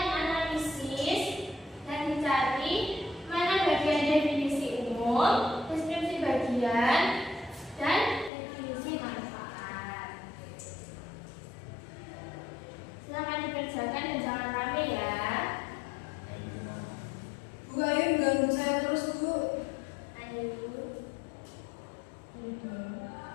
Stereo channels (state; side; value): drops out; right; at 8.3 s